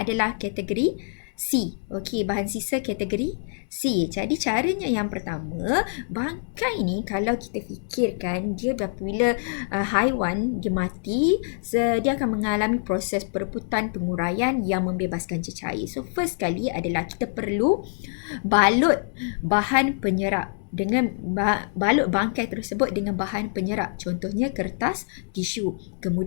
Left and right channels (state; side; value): silent; right; 62 dB below the other